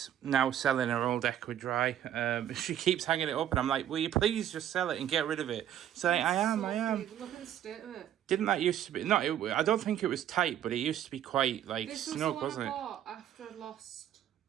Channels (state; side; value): quieter; left; 10.8 dB